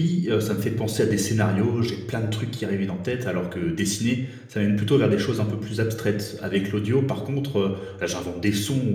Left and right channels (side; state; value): both; identical; correlation 1.00